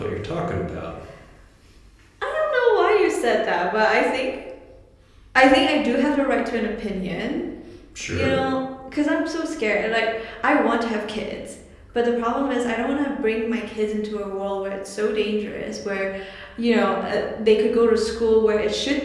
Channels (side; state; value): both; identical; correlation 1.00